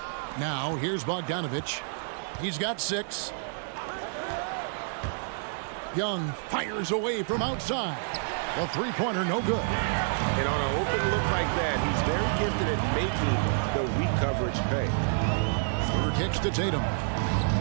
Now, here's Bogdanovich. He's got 6. Young fires away from outside. The 3-pointer, no good. And on an open look like that, he's very gifted at making the weak coverage pay. Schroeder kicks to Tatum.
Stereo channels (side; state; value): left; silent; 59 dB below the other